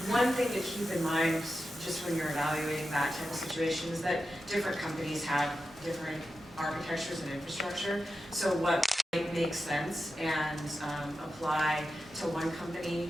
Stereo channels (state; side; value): normal; both; correlation 0.91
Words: One thing to keep in mind, just when you're evaluating that type of situation, is that different companies have different architectures and infrastructure. So what might make sense and apply to one company